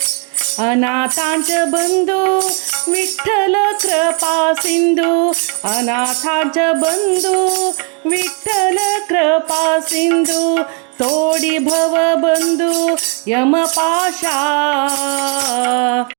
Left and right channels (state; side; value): quieter; left; 38.1 dB